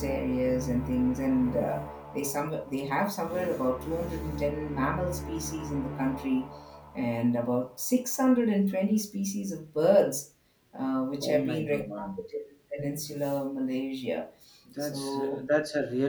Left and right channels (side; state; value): both; identical; correlation 1.00